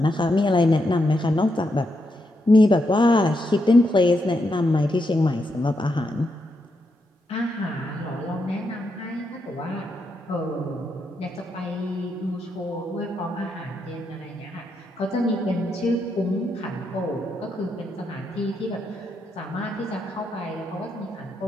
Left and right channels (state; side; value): normal; both; correlation 0.82